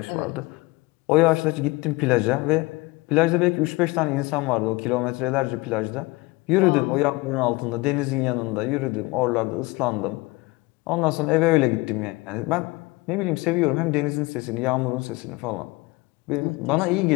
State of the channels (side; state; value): right; quieter; 23.3 dB